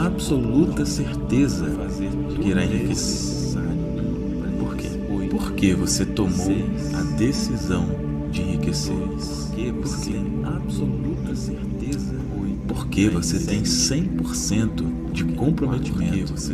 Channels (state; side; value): identical; both; correlation 1.00